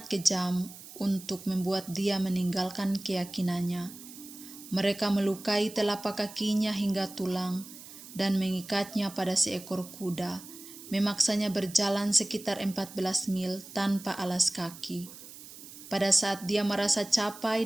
kejam untuk membuat dia meninggalkan keyakinannya. Mereka melukai telapak kakinya hingga tulang dan mengikatnya pada seekor kuda, memaksanya berjalan sekitar 14 mil tanpa alas kaki. Pada saat dia merasa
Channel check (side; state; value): right; noise; hiss, 16 dB below the sound